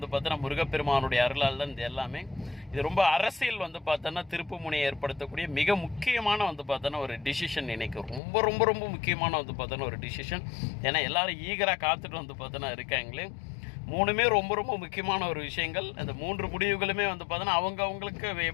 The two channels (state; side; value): drops out; right; at 8.2 s